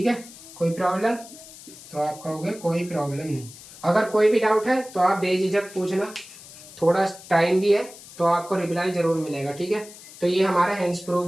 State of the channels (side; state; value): left; noise; hiss, 18 dB below the sound